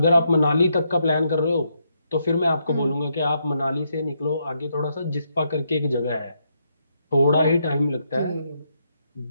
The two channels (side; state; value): both; inverted; correlation -0.78